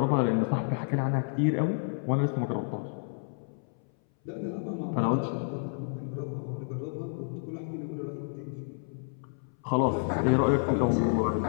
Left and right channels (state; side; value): silent; right; 58 dB below the other